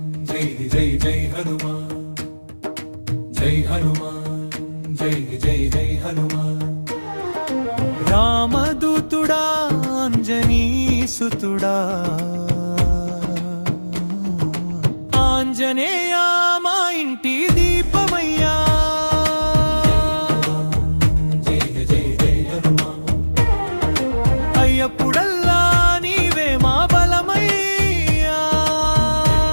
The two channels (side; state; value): both; inverted; correlation -1.00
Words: జై జై జై హనుమాన్ జై హనుమాన్ జై జై జై హనుమాన్ రామదూతుడా అంజనీసుతుడా ఆంజనేయ మా ఇంటి దీపమయ్యా జై జై జై హనుమాన్ అయ్యప్పుడల్లా నీవే మా బలమయ్యా